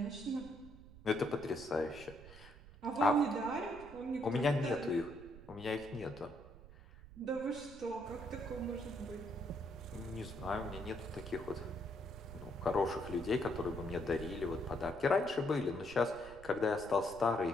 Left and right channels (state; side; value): noise; right; rumble, 18 dB below the sound